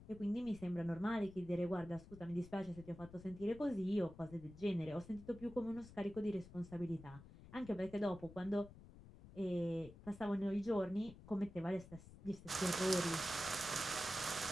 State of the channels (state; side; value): noise; left; rumble, 17 dB below the sound